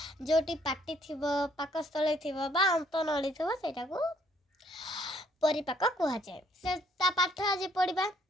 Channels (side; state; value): both; normal; correlation 0.66